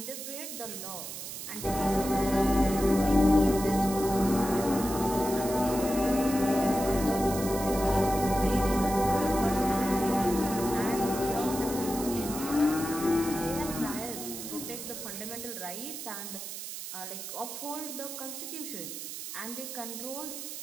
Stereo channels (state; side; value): noise; right; hiss, 8 dB below the sound